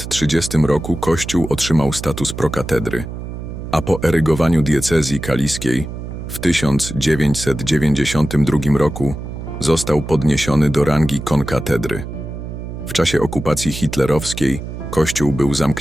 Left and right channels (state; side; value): noise; right; hum, 8 dB below the sound